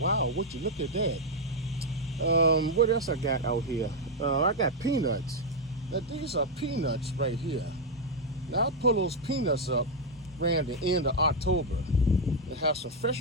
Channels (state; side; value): normal; both; correlation 0.01